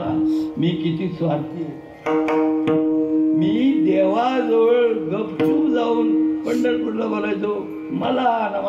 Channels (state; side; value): identical; both; correlation 1.00